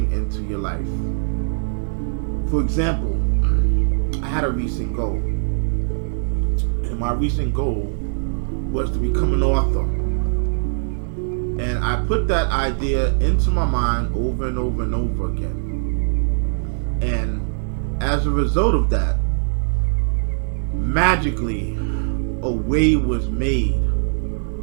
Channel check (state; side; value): silent; left; 64 dB below the other